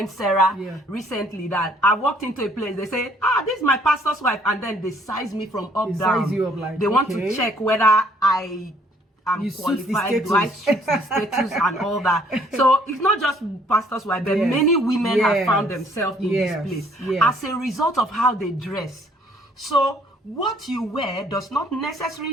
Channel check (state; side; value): normal; both; correlation 0.62